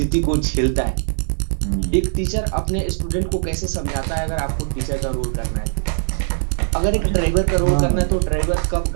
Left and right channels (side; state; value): left; silent; digital silence